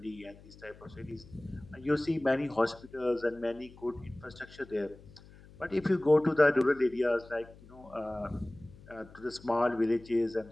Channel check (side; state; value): left; noise; hum, 21 dB below the sound